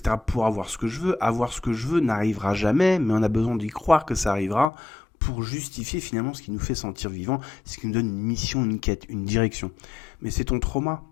pour avoir ce que je veux. Avoir ce que je veux n'arrivera jamais, mais on a besoin d'y croire que ça arrivera pour justifier finalement ce qui nous fait sentir vivant, ce qui nous donne une mission, une quête, une direction. Mais c'est ton trauma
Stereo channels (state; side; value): drops out; right; at 4.7 s